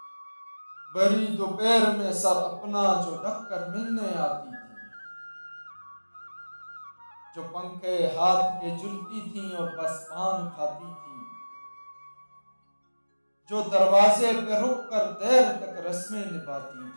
بڑی دوپہر میں سر اپنا جو ڈھک کر ملنے آتی تھیں، جو پنکھے ہاتھ کے جلتی تھیں اور بس پان کھاتی تھیں، جو دروازے پہ رک کر دیر تک رسمیں نبھاتی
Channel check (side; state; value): both; inverted; correlation -1.00